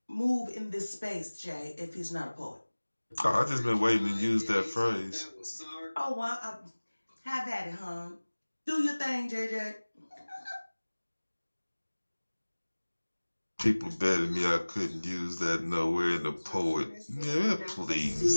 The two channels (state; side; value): inverted; both; correlation -1.00